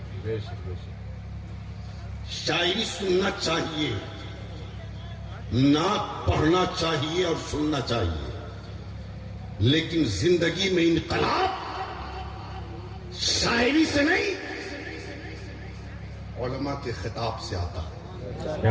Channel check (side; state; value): both; identical; correlation 1.00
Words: بے شک بے شک۔ شاعری سننا چاہیے، نعت پڑھنا چاہیے اور سننا چاہیے، لیکن زندگی میں انقلاب شاعری سے نہیں علماء کے خطاب سے آتا ہے۔